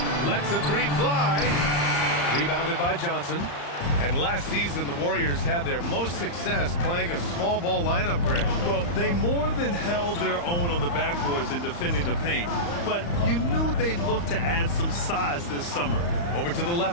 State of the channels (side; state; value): right; late; 35 ms